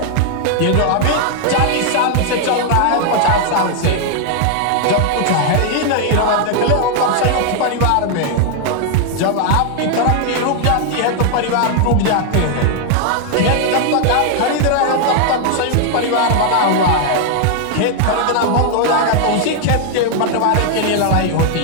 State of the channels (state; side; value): different; both; correlation 0.00